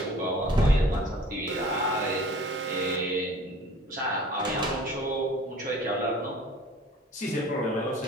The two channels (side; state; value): both; normal; correlation 0.47